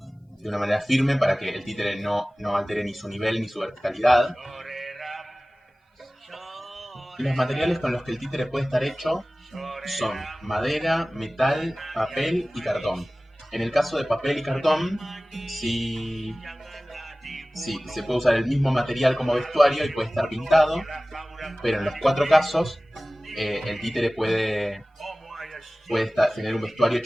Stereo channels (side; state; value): both; normal; correlation 0.98